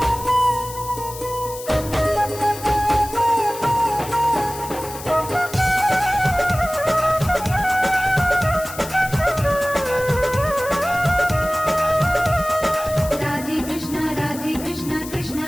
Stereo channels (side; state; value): left; noise; hiss, 13 dB below the sound